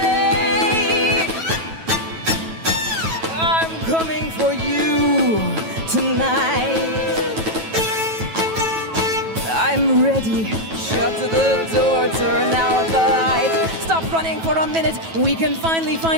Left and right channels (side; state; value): left; late; 9.2 ms